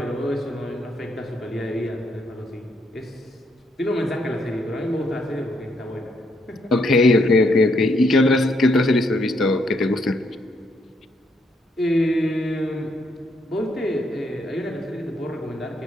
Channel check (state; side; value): normal; both; correlation 0.74